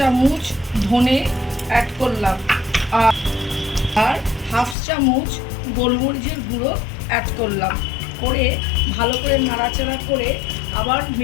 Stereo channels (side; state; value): right; drops out; at 4.8 s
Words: ধনে অ্যাড করলাম, আর 1/2 চামচ গোলমরিচের গুঁড়ো অ্যাড করলাম। করে ভালো করে নাড়াচাড়া করে আবার